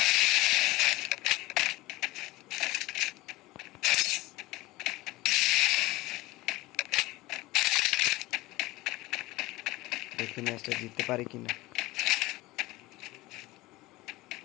দেখি ম্যাচটা জিততে পারি কিনা।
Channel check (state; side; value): quieter; right; 19.6 dB